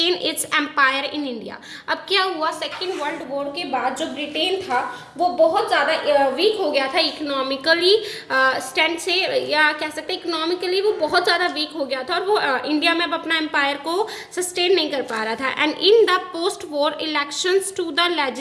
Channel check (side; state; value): both; identical; correlation 1.00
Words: its empire in India. अब क्या हुआ, सेकेंड वर्ल्ड वॉर के बाद जो ब्रिटेन था वो बहुत ज़्यादा वीक हो गया था इकोनॉमिकली स्टैंड से, या कह सकते हैं इकोनॉमिकली वो बहुत ज़्यादा वीक हो गया था और वो इंडिया में अब अपना एम्पायर को सस्टेन नहीं कर पा रहा था. And in the post war elections to the